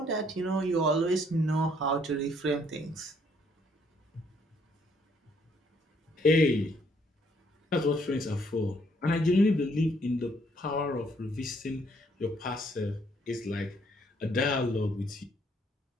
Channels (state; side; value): normal; both; correlation 0.67